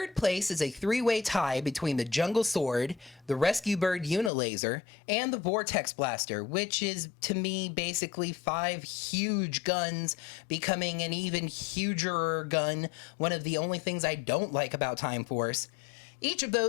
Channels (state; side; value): drops out; right; at 4.3 s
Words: place is a 3-way tie between the Jungle Sword, the Rescue Bird Unilaser, and the Vortex Blaster, which is, to me, basically 5 huge guns becoming an even huger gun, one of the only things I don't like about Time Force. Each of